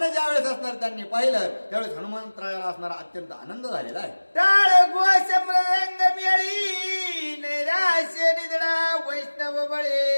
ज्या वेळेस असणार त्यांनी पाहिलं, त्यावेळेस हनुमंतरायाला असणारा अत्यंत आनंद झालेला आहे. टाळ घोष मृदंग मेळी नैराश्य निधडा वैष्णव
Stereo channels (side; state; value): both; inverted; correlation -1.00